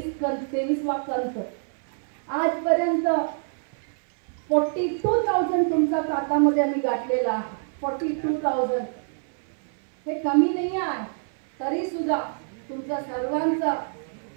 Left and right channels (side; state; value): left; silent; 59 dB below the other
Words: कंत. आजपर्यंत 42,000 तुमच्या खात्यामध्ये आम्ही गाठलेला आहे. 42,000 हे कमी नाही आहे. तरी सुद्धा तुमचा सर्वांचा